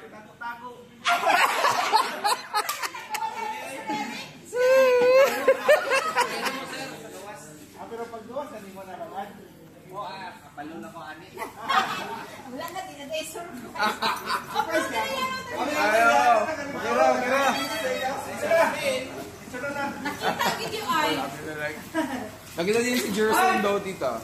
Pero pag gawas, hindi mo na naman. Kapalo na ko ani. Wala na, dinadesor. Ayaw! Nakita ang video ay. Nakita din si Jerson daw, tita.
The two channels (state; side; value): identical; both; correlation 1.00